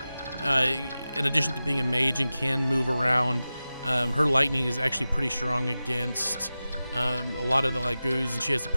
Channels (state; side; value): inverted; both; correlation -0.95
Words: in addition to being a mage and can move around, her lightning is actually pretty strong against a lot of the Lagoos, and she has a